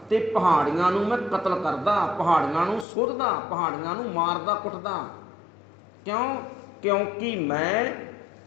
ते पहाड़ियां नूं मैं कतल करदा, पहाड़ियां नूं सुधदा, पहाड़ियां नूं मारदा कुटदा। क्यों? क्योंकि मैं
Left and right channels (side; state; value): right; drops out; at 2.9 s